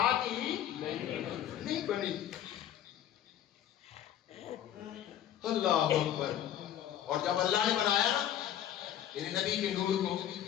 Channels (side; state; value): right; quieter; 11.1 dB